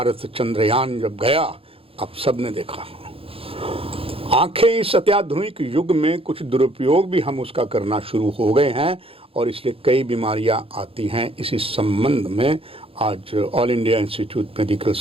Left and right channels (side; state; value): left; late; 0.27 ms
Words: चंद्रयान जब गया, आप सब ने देखा, आंखें इस अत्याधुनिक युग में कुछ दुरुपयोग भी हम उसका करना शुरू हो गए हैं और इसलिए कई बीमारियां आती हैं। इसी संबंध में आज all India institute medical